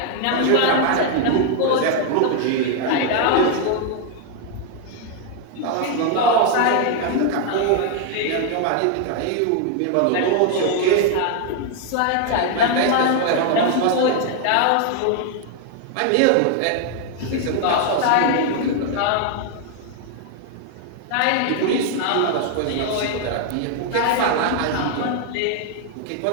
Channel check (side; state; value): both; different; correlation 0.00